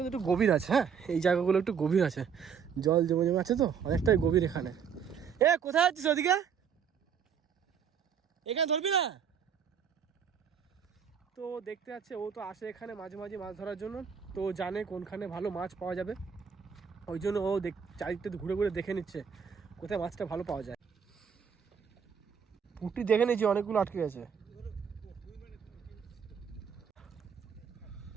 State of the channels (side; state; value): left; quieter; 7.1 dB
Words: একটু গভীর আছে। হ্যাঁ, এই জায়গাগুলো একটু গভীর আছে, জল জমে জমে আছে তো অনেকটাই গভীর এখানে। এ কোথায় যাচ্ছিস ওদিকে, এখানে ধরবি না? তো দেখতে যাচ্ছে, ও তো আসে এখানে মাঝে মাঝে মাছ ধরার জন্য, তো জানে কোনখানে ভালো মাছ পাওয়া যাবে। ওই জন্য ও চারিদিকটা ঘুরে ঘুরে দেখে নিচ্ছে কোথায় মাছটা ভালো পাওয়া যায়। পুঁটি দেখে নিয়েছি, অনেকগুলো আটকে গেছে।